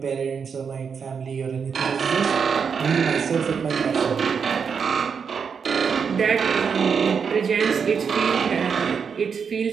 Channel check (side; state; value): left; quieter; 6.3 dB